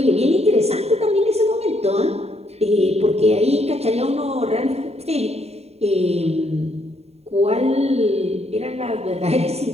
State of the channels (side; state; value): left; late; 0.30 ms